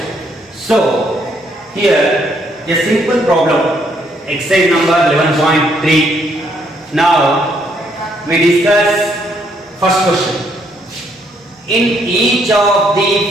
So here a simple problem, exercise number 11.3. Now we discuss first question. In each of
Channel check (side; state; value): both; normal; correlation 0.71